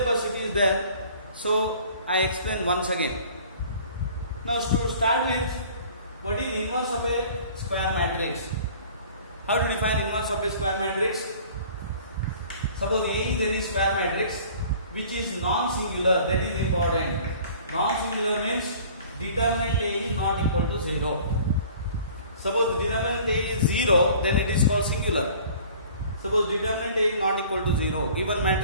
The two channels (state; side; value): inverted; both; correlation -0.49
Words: it is there, so I explain once again. Now to start with, what is inverse of a square matrix? How to define inverse of a square matrix? Suppose A is any square matrix which is non-singular, that is important. Non-singular means determinant A is not equal to 0. Suppose determinant A is 0, then it is called singular. Suppose determinant A is not equal to 0, given